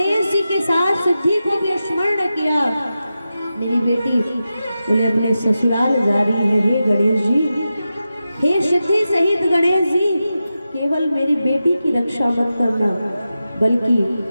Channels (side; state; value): both; inverted; correlation -0.91